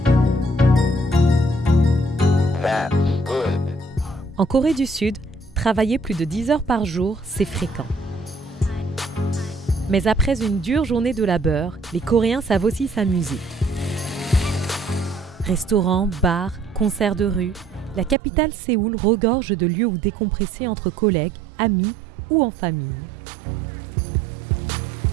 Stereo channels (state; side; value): drops out; left; at 18.2 s